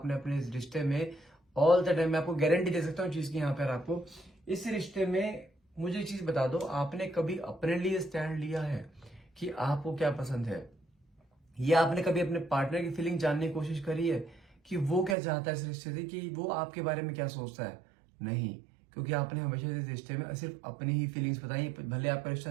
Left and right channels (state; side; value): drops out; left; at 15.2 s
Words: अपने इस रिश्ते में ऑल द टाइम, मैं आपको गारंटी दे सकता हूँ चीज की, यहाँ पर आपको इस रिश्ते में मुझे एक चीज बता दो, आपने कभी अपने लिए स्टैंड लिया है कि आपको क्या पसंद है? या आपने कभी अपने पार्टनर की फीलिंग जानने की कोशिश करी है कि वो क्या चाहता है इस रिश्ते से, कि वो आपके बारे में क्या सोचता है? नहीं, क्योंकि आपने हमेशा इस रिश्ते में सिर्फ अपनी ही फीलिंग्स बताई। भले आपका रिश्ता